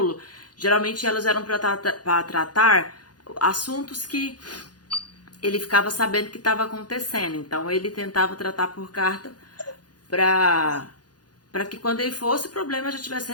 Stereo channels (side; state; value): right; late; 0.69 ms